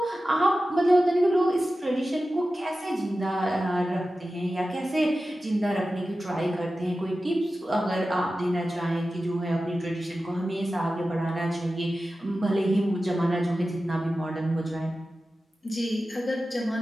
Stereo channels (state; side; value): normal; both; correlation 0.94